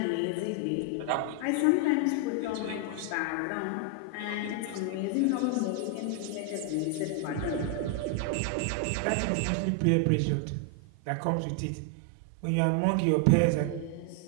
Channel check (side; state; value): both; different; correlation 0.00